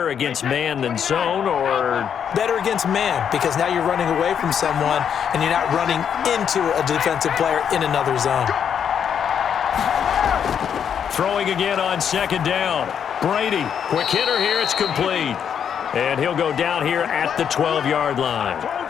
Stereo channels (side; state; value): right; quieter; 8.1 dB